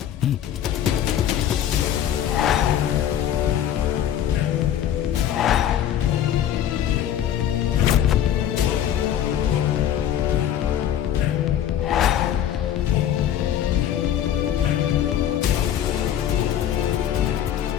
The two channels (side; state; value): right; quieter; 10.5 dB